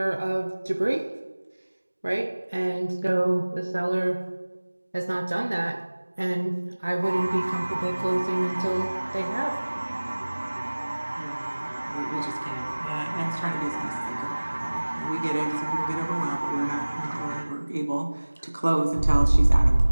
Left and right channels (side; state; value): both; inverted; correlation -1.00